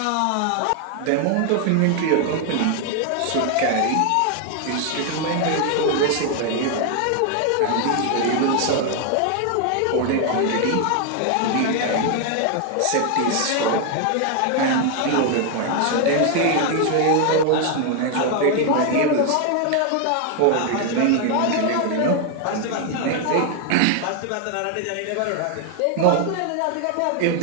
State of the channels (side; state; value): both; different; correlation 0.01